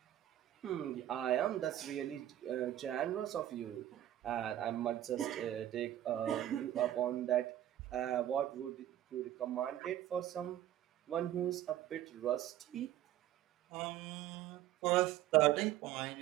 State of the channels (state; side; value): quieter; left; 12.7 dB